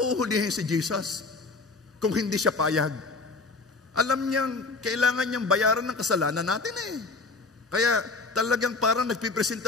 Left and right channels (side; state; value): right; quieter; 3.8 dB